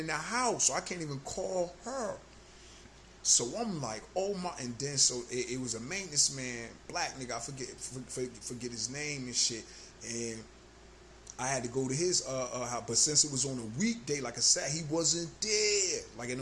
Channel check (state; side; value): identical; both; correlation 1.00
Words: the house, so I can't even call her. So I'm like, oh my, and then so it was a maintenance man, black nigga, I forget his name and shit, and I had to go to his house, but since it was on a weekday, like I said, he wasn't there. Like,